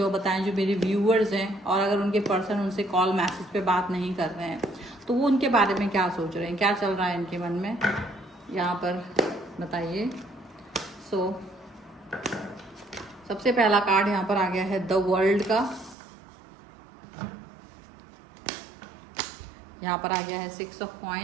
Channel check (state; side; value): drops out; left; at 16.0 s